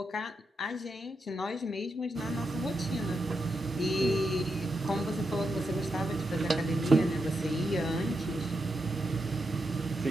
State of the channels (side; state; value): both; normal; correlation 0.85